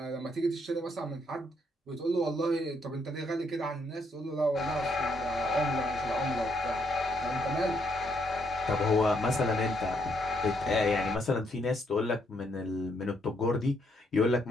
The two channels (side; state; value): both; normal; correlation 0.74